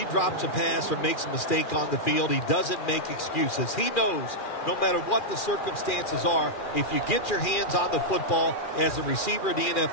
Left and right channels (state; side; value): late; right; 2.4 ms